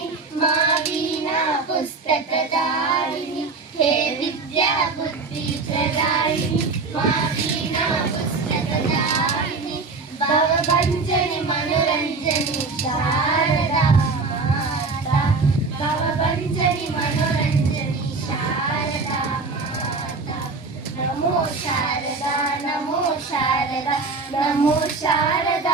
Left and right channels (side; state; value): left; quieter; 4.1 dB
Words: मा वीणा पुस्तकदायिनी हे विद्या बुद्धि प्रदायिनी मा वीणा पुस्तकदायिनी भवभञ्जनि मनोरञ्जनि शारदा माता भवभञ्जनि मनोरञ्जनि शारदा माता नमो शारदा नमो शारदा नमो